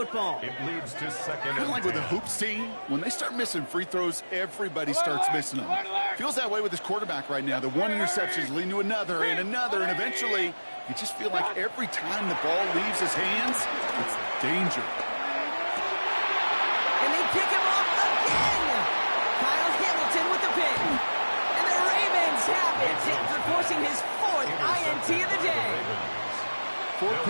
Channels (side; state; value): both; inverted; correlation -1.00